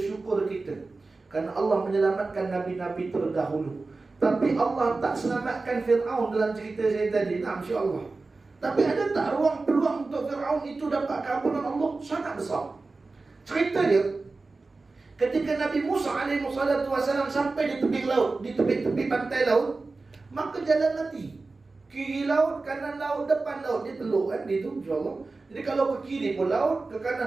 kita, kerana Allah menyelamatkan Nabi-Nabi terdahulu. Tapi Allah tak selamatkan Fir'aun dalam cerita saya tadi. Insya-Allah. Tapi ada tak ruang peluang untuk Fir'aun itu dapat keampunan Allah? Sangat besar. Cerita dia, ketika Nabi Musa alaihissalam sampai di tepi laut, di tepi pantai laut, maka jalan mati. Kiri laut, kanan laut, depan laut. Dia teluk kan, dia tu insya-Allah. Jadi kalau ke kiri pun laut, ke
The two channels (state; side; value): quieter; left; 3.7 dB